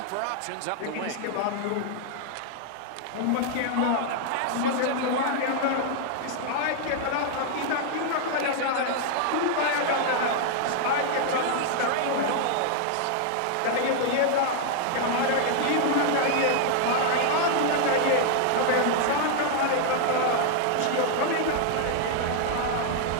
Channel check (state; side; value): different; both; correlation 0.00